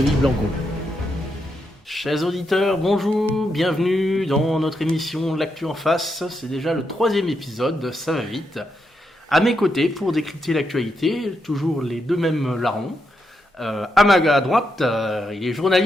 Blanco. Chers auditeurs, bonjour, bienvenue dans notre émission L'actu en face. C'est déjà le 3e épisode, ça va vite. À mes côtés, pour décrypter l'actualité, toujours les deux mêmes larrons. À droite, il est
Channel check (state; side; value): normal; both; correlation 0.82